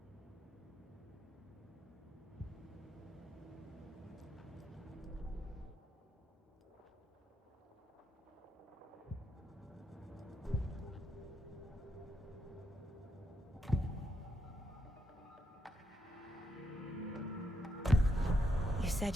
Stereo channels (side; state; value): both; normal; correlation 0.80